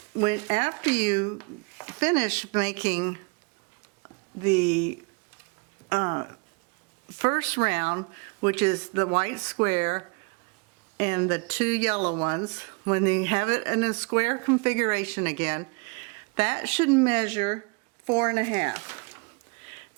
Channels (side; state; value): left; quieter; 31.6 dB